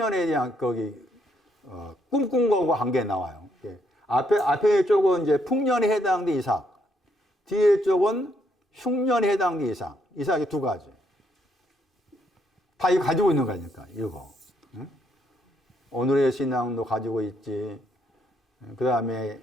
대한 꿈꾼 거과 관계 나와요. 앞에 쪽은 이제 풍년에 해당된 이삭, 뒤에 쪽은 흉년에 해당된 이삭. 이삭이 두 가지. 다 이거 가지고 있는 거니까, 이거. 응? 오늘의 신앙도 가지고 있지. 그 다음에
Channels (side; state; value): both; normal; correlation 0.73